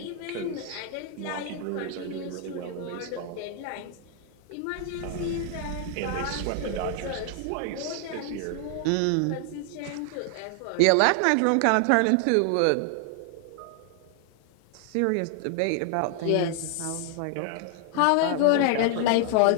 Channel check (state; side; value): different; both; correlation 0.00